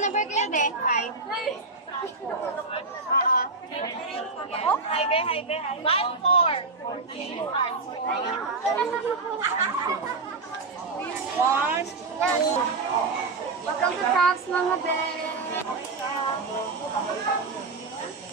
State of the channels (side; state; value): left; quieter; 3.9 dB